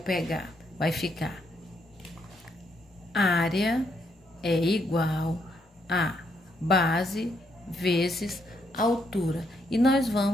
vai ficar área é igual a base vezes altura. E nós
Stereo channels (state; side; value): normal; both; correlation 0.75